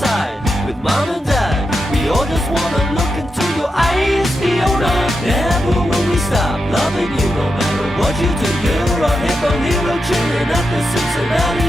with mom and dad. We all just wanna look into your eyes, Fiona. Never will we stop loving you, no matter what you do. You're a hippo hero chilling at the Cincinnati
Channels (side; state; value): both; normal; correlation 0.87